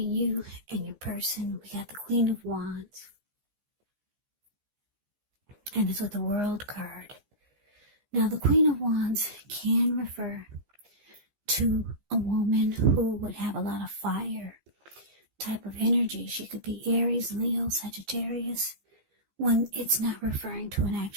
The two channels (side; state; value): left; late; 15 ms